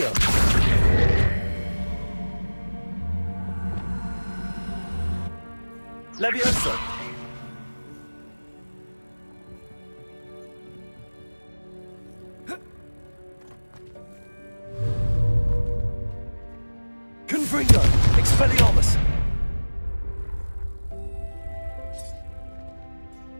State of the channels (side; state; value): both; inverted; correlation -1.00